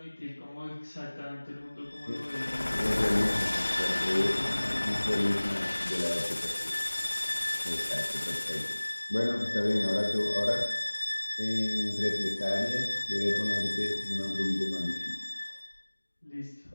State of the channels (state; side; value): inverted; both; correlation -1.00